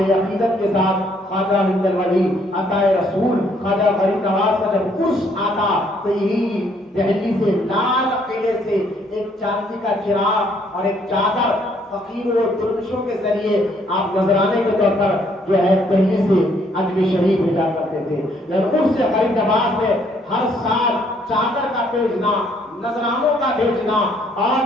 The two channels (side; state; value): both; normal; correlation 0.67